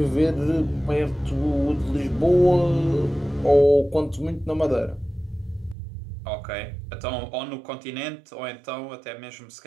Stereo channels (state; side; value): drops out; left; at 5.8 s